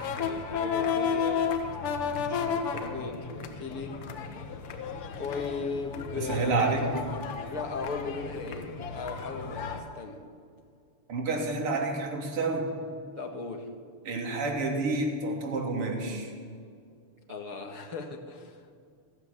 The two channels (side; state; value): left; late; 6.9 ms